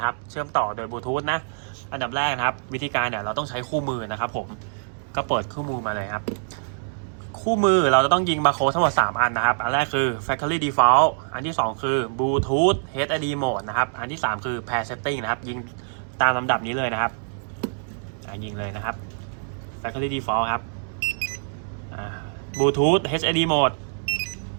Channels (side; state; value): left; silent; digital silence